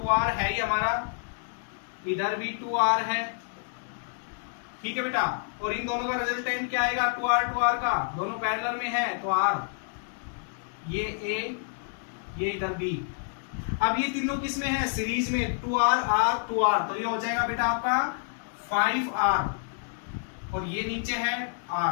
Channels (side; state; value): right; silent; digital silence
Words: है ही हमारा, इधर भी 2R है, ठीक है बेटा। और इन दोनों का रिजल्टेंट क्या आएगा? 2R का, दोनों पैरेलल में है, तो R, ये A, ये इधर B। अब ये तीनों किस में है? सीरीज में, 2R R 2R, तो ये हो जाएगा बेटा आपका 5R, और ये नीचे है